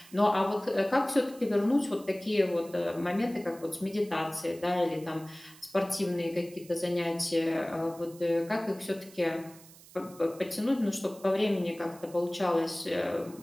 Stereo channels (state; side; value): noise; right; hiss, 22 dB below the sound